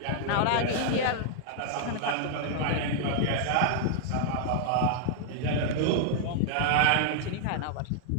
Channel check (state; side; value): different; both; correlation -0.01